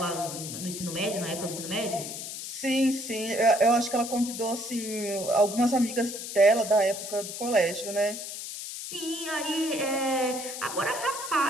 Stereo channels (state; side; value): noise; left; hiss, 8 dB below the sound